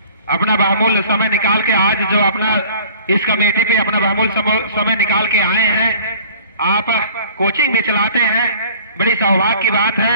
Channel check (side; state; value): both; inverted; correlation -0.50